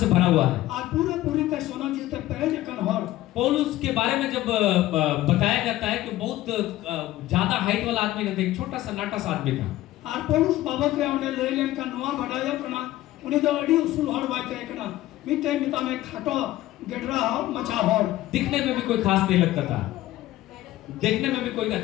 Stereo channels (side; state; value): right; quieter; 15.6 dB